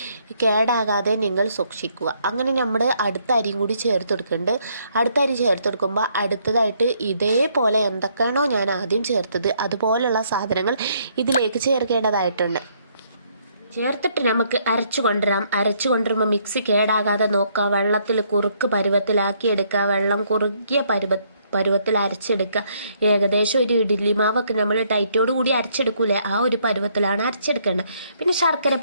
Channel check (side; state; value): both; inverted; correlation -0.69